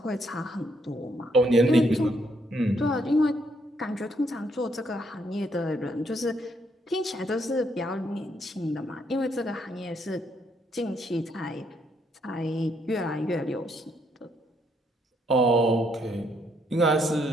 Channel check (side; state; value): both; normal; correlation 0.73